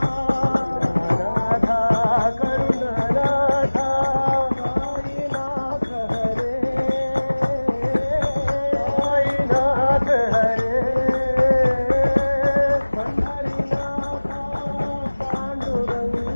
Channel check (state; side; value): inverted; both; correlation -1.00